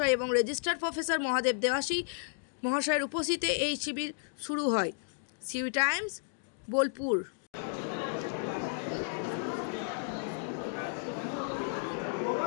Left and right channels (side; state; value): right; silent; digital silence